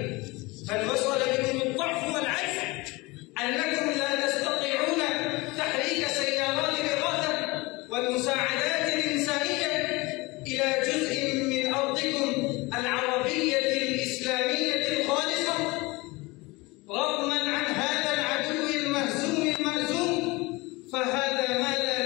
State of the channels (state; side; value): quieter; right; 23.4 dB